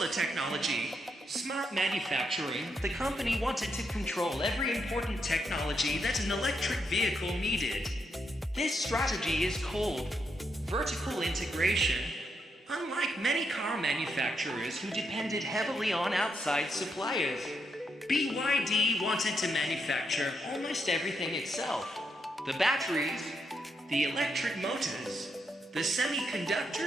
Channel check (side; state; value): both; normal; correlation 0.80